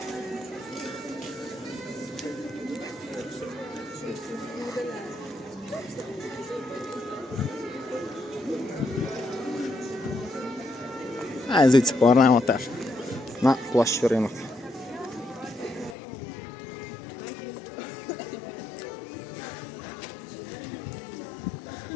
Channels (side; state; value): right; drops out; at 16.0 s